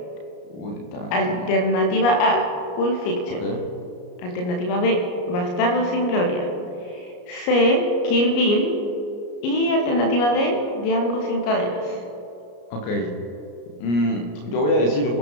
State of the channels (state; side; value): late; right; 33 ms